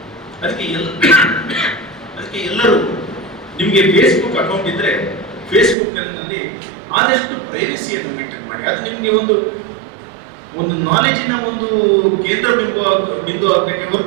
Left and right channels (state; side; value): drops out; left; at 5.8 s